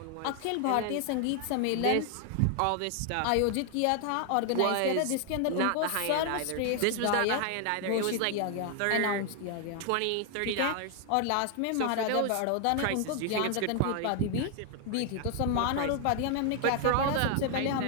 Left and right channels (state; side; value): different; both; correlation 0.00